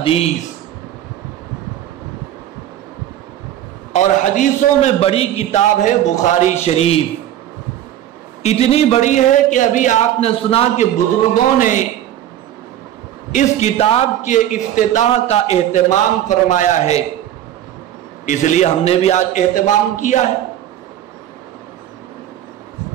اور حدیثوں میں بڑی کتاب ہے بخاری شریف، اتنی بڑی ہے کہ ابھی آپ نے سنا کہ بزرگوں نے اس کتاب کے افتتاح کا اہتمام فرمایا ہے، اس لیے ہم نے بھی آج اہتمام کیا ہے۔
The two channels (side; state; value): left; quieter; 11.7 dB